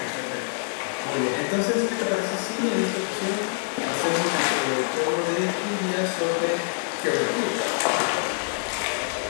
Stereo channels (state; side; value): silent; right; 61 dB below the other